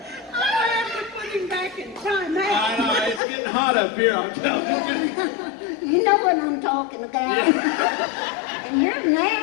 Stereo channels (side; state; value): right; drops out; at 3.2 s